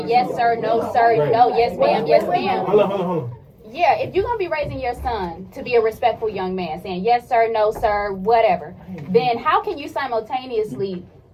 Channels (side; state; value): both; identical; correlation 1.00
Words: yes sir, no sir, no, yes ma'am, yes ma'am. Hold on. Yeah, if you're gonna be raising your son to be a respectful young man, saying yes sir, no sir, whatever, then how can you simultaneously